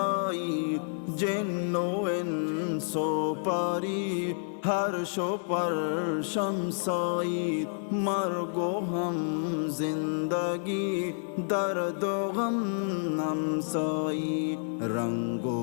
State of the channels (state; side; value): silent; right; digital silence